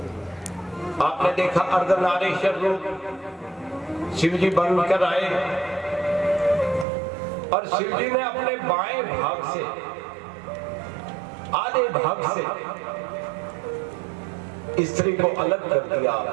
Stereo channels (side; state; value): left; drops out; at 6.9 s